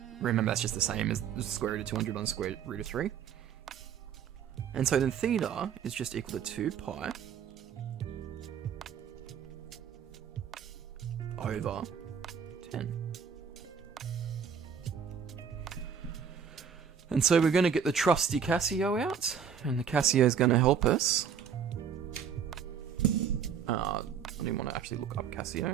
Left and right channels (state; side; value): quieter; left; 7.5 dB